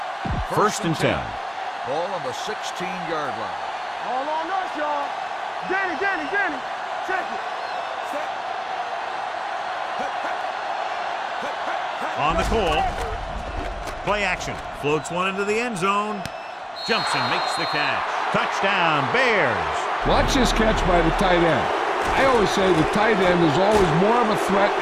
First and 10. Ball on the 16-yard line. All on us, y'all. Danny. Check it. On the call. Play action. Floats one into the end zone. Jumps and makes the catch. Touchdown, Bears. Watch this catch by the tight end. I always say the tight end is always more of a threat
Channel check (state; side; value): identical; both; correlation 1.00